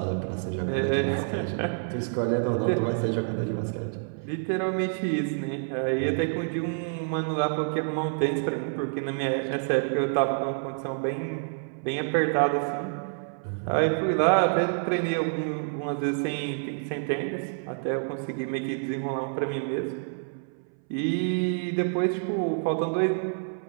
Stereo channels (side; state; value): left; silent; 59 dB below the other